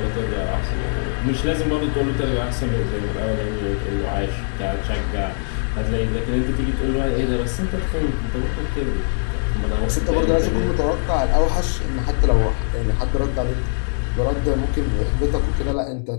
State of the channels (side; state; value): right; silent; digital silence